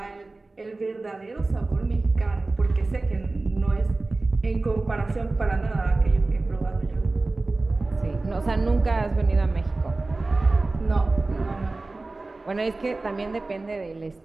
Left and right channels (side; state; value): left; quieter; 3.3 dB